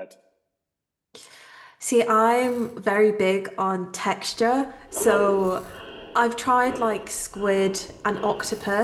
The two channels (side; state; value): both; identical; correlation 1.00